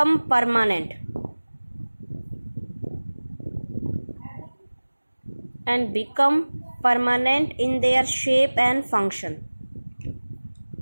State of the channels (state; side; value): inverted; both; correlation -1.00